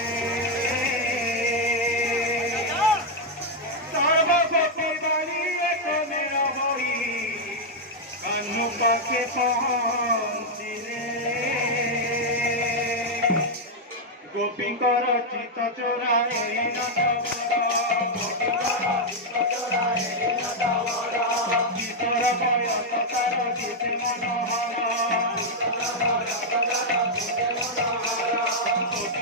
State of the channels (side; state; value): both; normal; correlation -0.01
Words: সর্বপতি বাড়ি একমে রবই কানু পাখে পহঞ্চিলে গোপীঙ্কর চিত চোরায়ে গীতর বয়স তার গীতে মনোহর